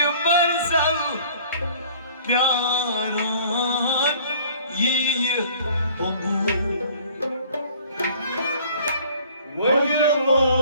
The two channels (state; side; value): inverted; both; correlation -0.52